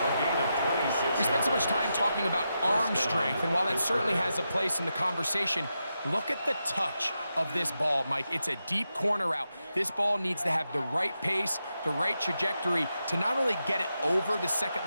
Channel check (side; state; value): both; inverted; correlation -0.87